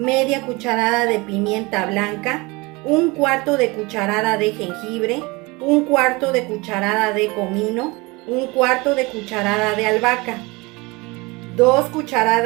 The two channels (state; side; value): quieter; left; 24.8 dB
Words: cucharada de pimienta blanca, 1/4 de cucharada de jengibre, 1/4 de cucharada de comino, 1/4 de cucharada de albahaca, 2